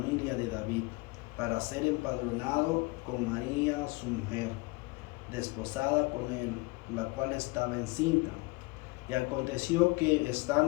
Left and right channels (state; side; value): quieter; right; 25.1 dB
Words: de David, para ser empadronado con María su mujer, desposada con él, la cual estaba encinta. Y aconteció que,